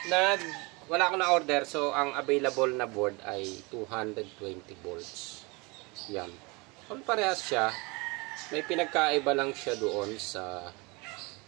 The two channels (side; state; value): left; quieter; 27.2 dB